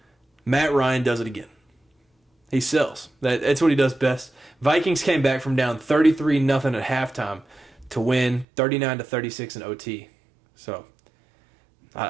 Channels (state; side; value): drops out; left; at 8.5 s